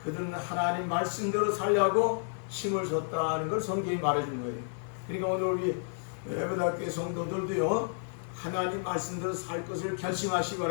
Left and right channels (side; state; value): right; silent; digital silence